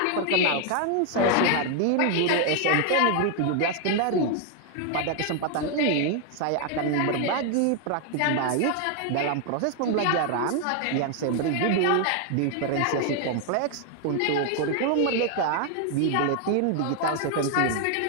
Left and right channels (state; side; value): different; both; correlation 0.00